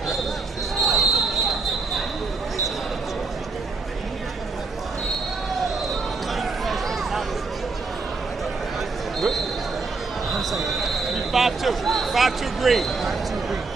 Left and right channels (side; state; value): left; quieter; 4.1 dB